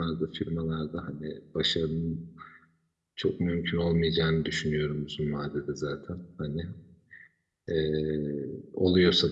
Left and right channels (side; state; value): both; identical; correlation 1.00